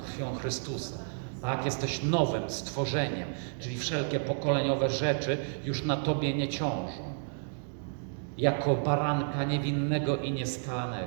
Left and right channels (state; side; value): silent; left; digital silence